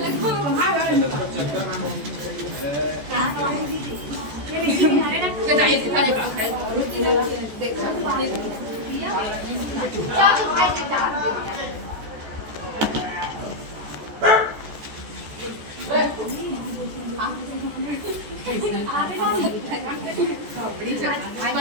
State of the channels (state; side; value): late; left; 14 ms